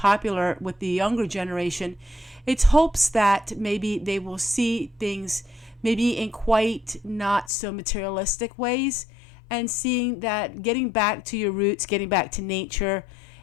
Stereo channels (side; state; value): right; drops out; at 7.5 s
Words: with the younger generation. It's hopes that maybe they will see things maybe in quite not so materialistic ways, and seeing that getting back to your roots, getting back to nature